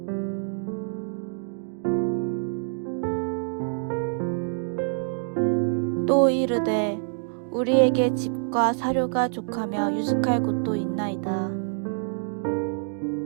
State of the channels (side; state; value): left; silent; digital silence